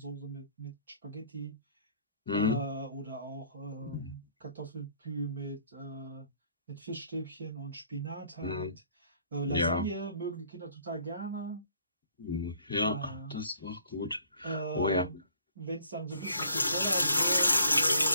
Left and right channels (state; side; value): inverted; both; correlation -0.60